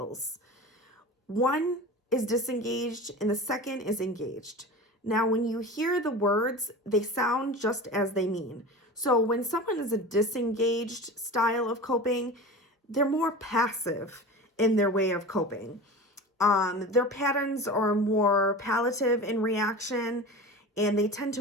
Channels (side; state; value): both; normal; correlation 0.32